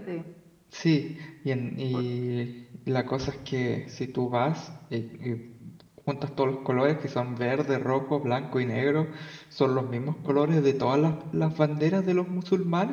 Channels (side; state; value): both; identical; correlation 1.00